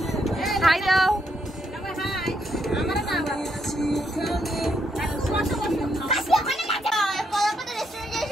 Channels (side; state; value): both; normal; correlation 0.77